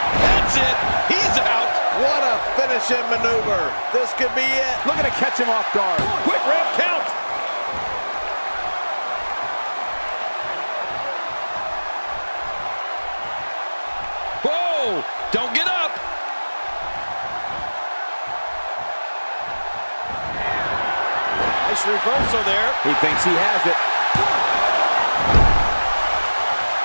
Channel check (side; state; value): both; inverted; correlation -1.00